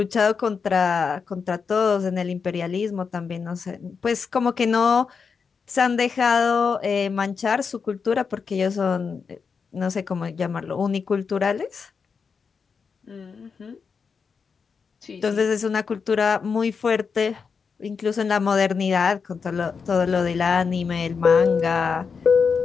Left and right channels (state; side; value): quieter; right; 5.6 dB